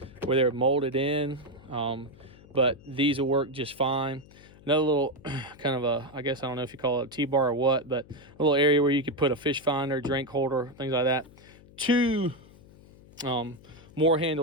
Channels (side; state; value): left; noise; hum, 23 dB below the sound